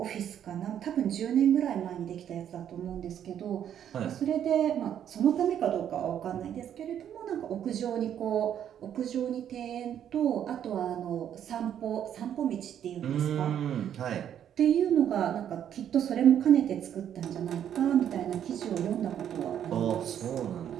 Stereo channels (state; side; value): quieter; left; 9.7 dB